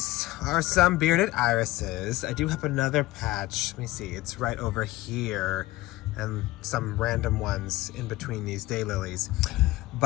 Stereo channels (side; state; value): right; quieter; 18.2 dB